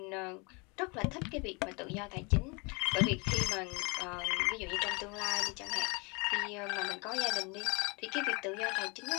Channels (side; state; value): right; quieter; 30.5 dB